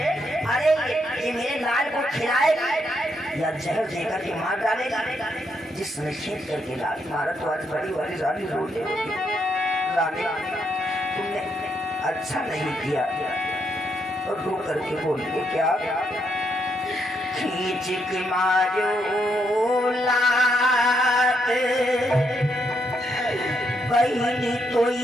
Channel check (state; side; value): normal; both; correlation 0.77